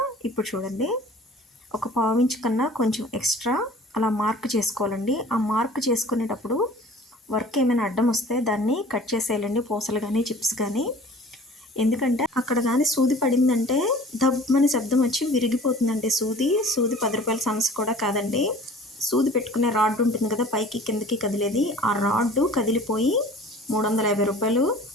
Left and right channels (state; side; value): normal; both; correlation 0.46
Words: ఇప్పుడు చూడండి, ఒక పావించు కన్నా కొంచెం ఎక్స్ట్రా అలా మార్క్ చేసుకోవాలండి. ఆ మార్క్ చేసుకునేటప్పుడు వర్క్ ఏమైనా అడ్డం వస్తే దాన్ని కట్ చేసేయాలండి, పూసలు కానీ చిప్స్ కానీ. ఎందుకంటే అక్కడ కానీ సూది పడిందంటే దబ్బమని శబ్దం వచ్చి విరిగిపోతుందండి. సూది 10 రూపాయల సమస్య కూడా కాదండి. సూది పెట్టుకునే రాడ్ ఉంటుంది కదా, పైకి కిందకి కదిలేది, ఆ రాడ్ కదిలిపోయి 350 రూపాయలు